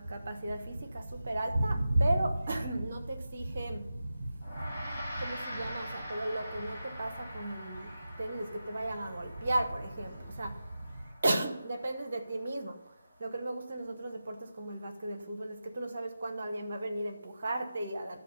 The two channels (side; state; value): both; inverted; correlation -0.91